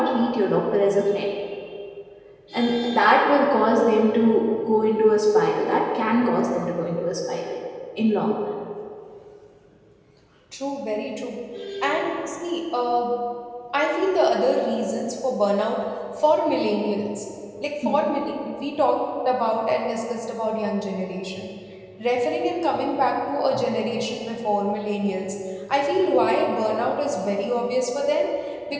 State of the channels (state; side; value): identical; both; correlation 1.00